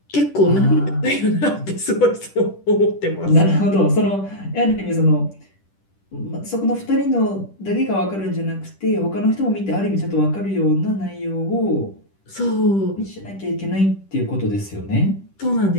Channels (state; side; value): late; right; 10 ms